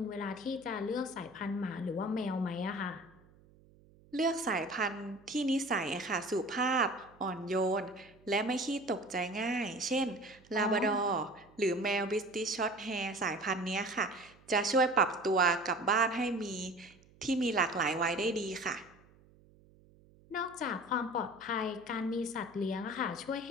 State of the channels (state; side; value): noise; right; hum, 27 dB below the sound